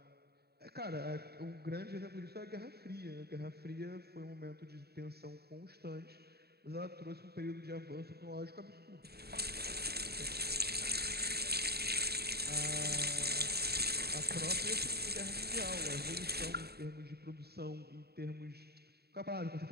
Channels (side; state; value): left; late; 0.47 ms